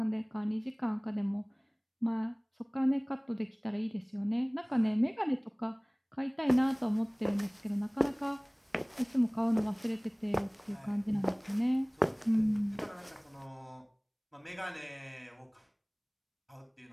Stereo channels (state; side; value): identical; both; correlation 1.00